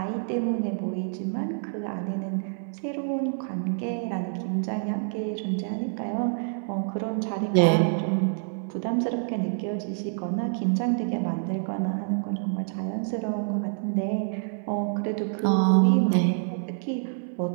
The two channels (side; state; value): left; silent; digital silence